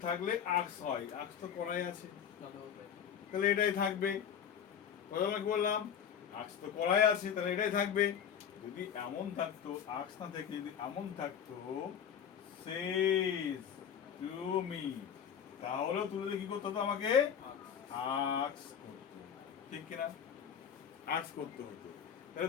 থাকলে আক্স হয়, আক্স তো কড়াই আছে, তাহলে এটাই থাকবে। কথা কি বললাম? আক্স তো কড়াই আছে, তাহলে এটাই থাকবে। যদি এমন থাকতো, আক্স না থেকে যদি এমন থাকতো says to me, তাহলে তুলে কি করতে হতো? আমাকে আক্স করতে, ঠিক কিনা? আক্স করতে হতো।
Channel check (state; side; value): quieter; right; 8.2 dB